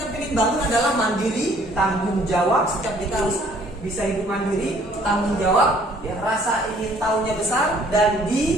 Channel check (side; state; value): both; normal; correlation 0.59